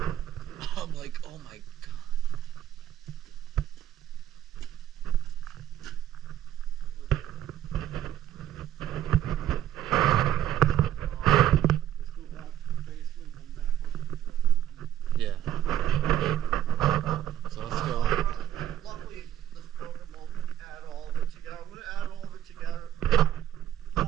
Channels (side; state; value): left; quieter; 11.4 dB